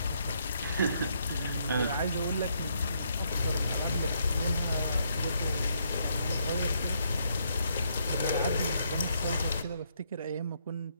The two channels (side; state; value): both; inverted; correlation -0.74